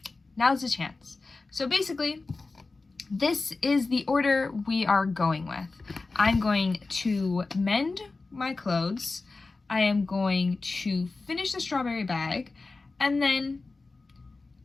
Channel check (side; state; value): right; quieter; 3.7 dB